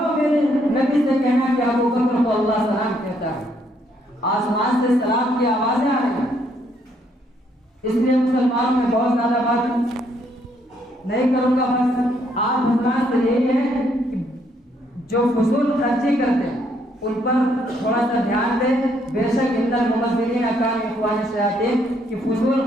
میرے نبی سے کہنا کہ ابوبکر کو اللہ سلام کہتا ہے۔ آسمان سے سلام کی آوازیں آ رہی ہیں، اس لیے مسلمانوں میں بہت زیادہ بات نہیں کروں گا، بس آپ حضرات سے یہی ہے کہ جو فضول خرچی کرتے ہیں ان پر تھوڑا سا دھیان دیں۔ بے شک ان المبذرین کانوا اخوان الشیاطین کہ فضول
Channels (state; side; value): normal; both; correlation 0.71